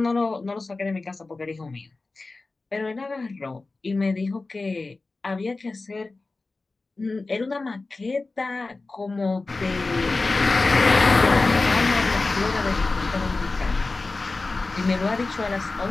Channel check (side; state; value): right; quieter; 3.5 dB